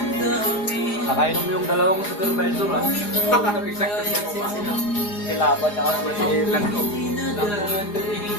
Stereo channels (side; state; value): right; late; 4.9 ms